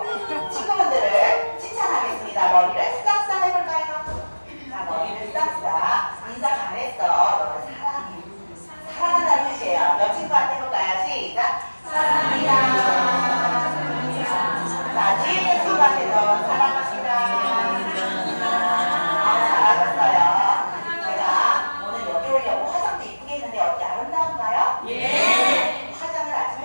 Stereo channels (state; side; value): inverted; both; correlation -1.00